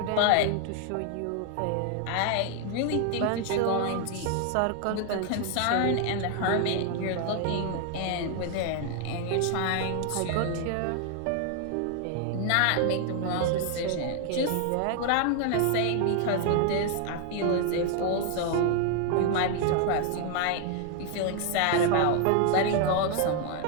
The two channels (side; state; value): both; different; correlation 0.00